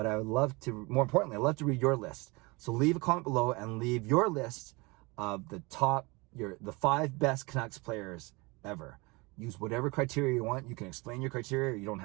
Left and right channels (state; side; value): quieter; left; 25.8 dB